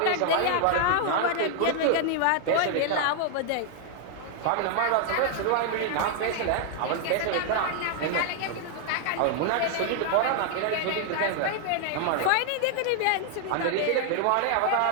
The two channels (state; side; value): different; both; correlation 0.00